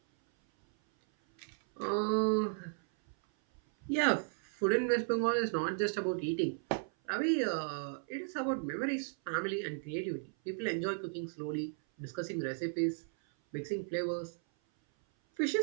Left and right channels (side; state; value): left; silent; 54 dB below the other